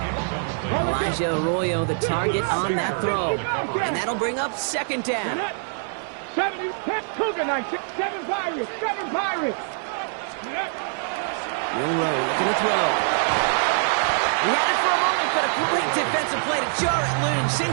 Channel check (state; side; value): silent; left; 62 dB below the other